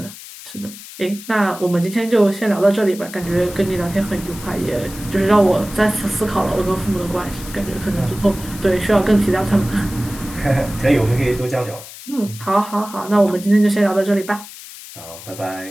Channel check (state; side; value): noise; left; hiss, 15 dB below the sound